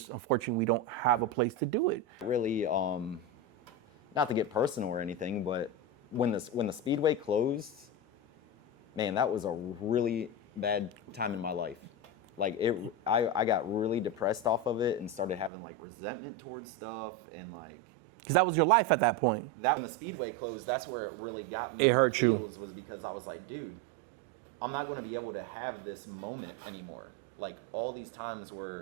unfortunately we don't have a place to do it. Really, not to get personal or anything, but when the speedway closed, man, that was a really bad time in my life. Like I got really depressed off of it and started having like resentment towards stuff and like. Because that was your life at that point. That when the speedway closed, that's where it really got me in my feels, was because I was like, dude, I'm not going to be able to have this moment anymore. Like all these times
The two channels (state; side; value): drops out; left; at 15.5 s